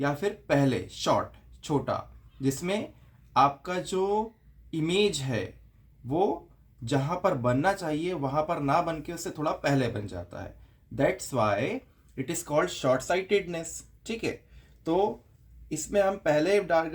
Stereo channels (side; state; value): both; identical; correlation 1.00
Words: फिर पहले शॉर्ट छोटा, जिसमें आपका जो इमेज है वो जहां पर बनना चाहिए वहां पर ना बन के उससे थोड़ा पहले बन जाता है। That's why it is called short sightedness. ठीक है। तो इसमें हम पहले